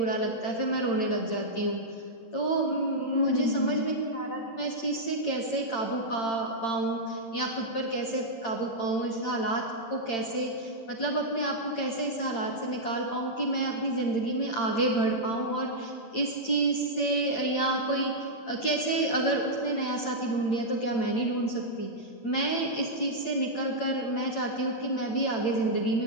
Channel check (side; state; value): right; late; 8.8 ms